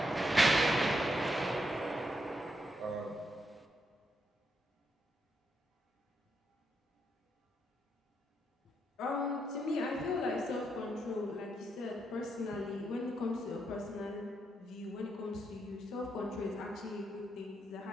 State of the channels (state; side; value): normal; both; correlation 0.80